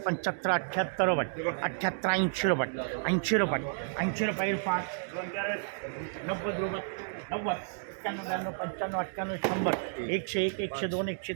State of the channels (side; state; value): left; silent; digital silence